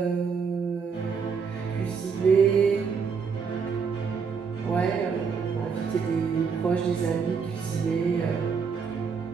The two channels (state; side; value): quieter; left; 5.8 dB